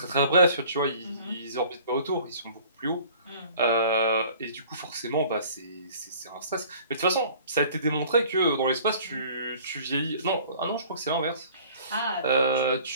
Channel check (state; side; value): inverted; both; correlation -0.49